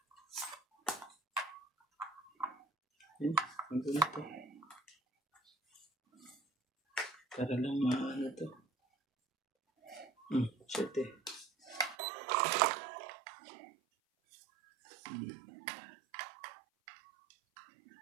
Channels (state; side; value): drops out; left; at 12.0 s